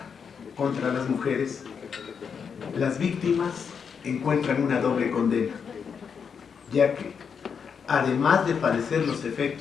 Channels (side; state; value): right; quieter; 6.5 dB